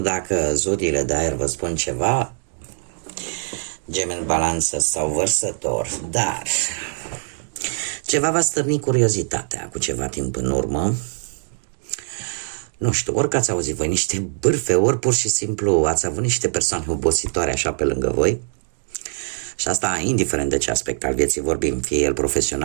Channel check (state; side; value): silent; left; digital silence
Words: zodiile de aer vă spun ceva, Gemeni, Balanță sau Vărsător, dar ceva va stârni curiozitatea cu ceva timp în urmă. Nu știu, ori că ați auzit voi niște bârfe, ori pur și simplu ați avut niște persoane obositoare așa pe lângă voi. Și asta indiferent de ce aspect al vieții vorbim, fie el